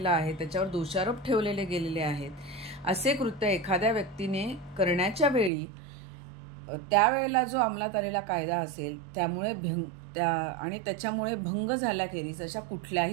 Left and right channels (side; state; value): left; drops out; at 5.5 s